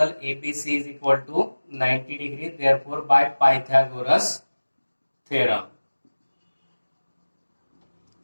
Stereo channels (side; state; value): both; inverted; correlation -1.00